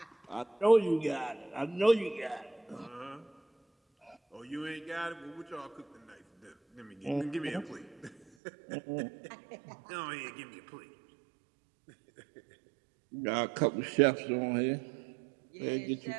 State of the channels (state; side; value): drops out; left; at 8.2 s